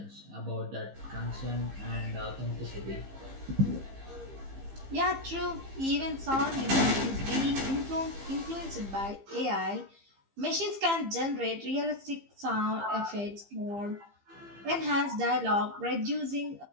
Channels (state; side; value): late; left; 15 ms